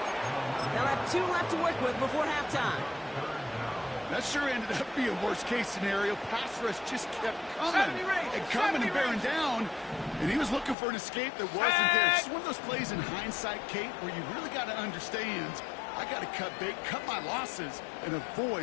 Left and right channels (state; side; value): drops out; right; at 10.8 s